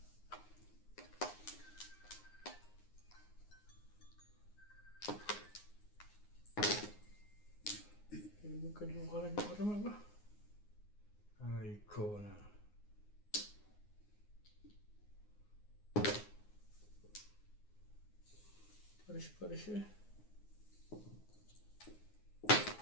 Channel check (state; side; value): late; right; 9.6 ms